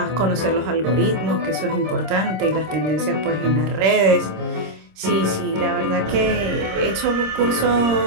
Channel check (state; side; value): late; left; 26 ms